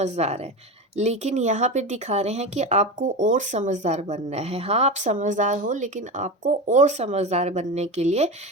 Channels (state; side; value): normal; both; correlation 0.23